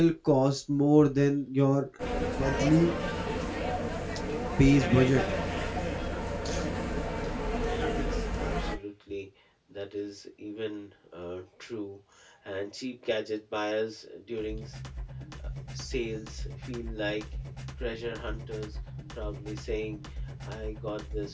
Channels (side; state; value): both; identical; correlation 1.00